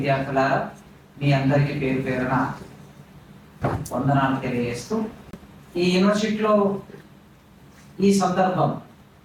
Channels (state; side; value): identical; both; correlation 1.00